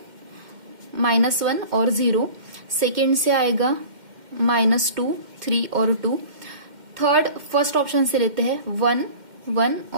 -1 और 0। सेकेंड से आएगा -2, 3 और 2। थर्ड फर्स्ट ऑप्शन से लेते हैं, 1, 1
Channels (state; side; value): late; left; 2.1 ms